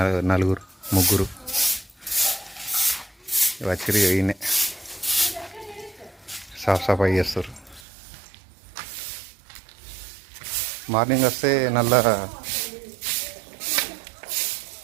నలుగురు ముగ్గురు వచ్చి ఈయనే సాఫ్ సఫాయి చేస్తారు. మార్నింగ్ వస్తే నల్ల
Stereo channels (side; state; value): left; drops out; at 7.8 s